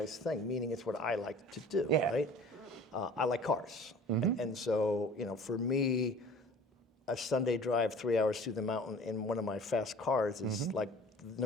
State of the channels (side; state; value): both; normal; correlation 0.46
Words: thing, meaning it's what I like to do, right? I like cars. And so, for me, a Sunday drive 3 hours through the mountain in one of my fast cars is like